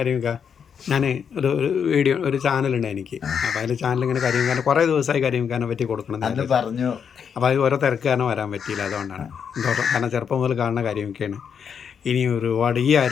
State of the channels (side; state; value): right; quieter; 7.2 dB